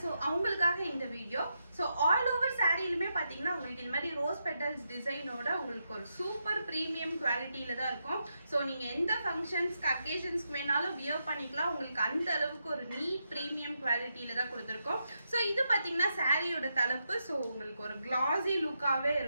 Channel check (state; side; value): inverted; both; correlation -0.84